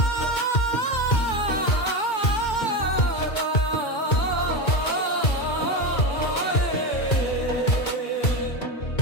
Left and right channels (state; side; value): late; right; 2.2 ms